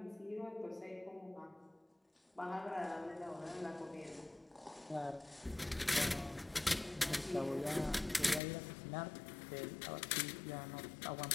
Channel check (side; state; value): right; drops out; at 8.4 s